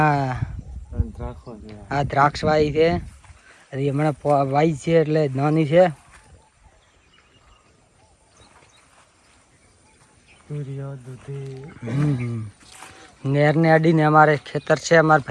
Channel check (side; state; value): both; identical; correlation 1.00